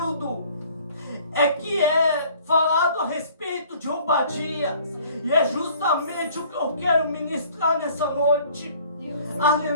é que é falado a respeito de Obadias, e é justamente o que eu quero ministrar nessa noite.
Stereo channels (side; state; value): both; inverted; correlation -0.55